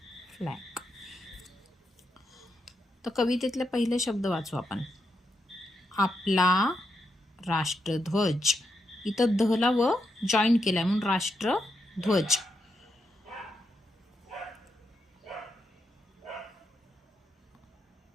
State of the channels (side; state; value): both; normal; correlation 0.83